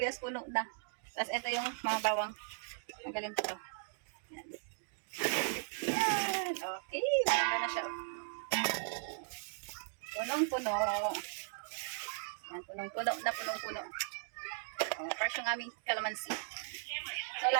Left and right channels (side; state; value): left; silent; digital silence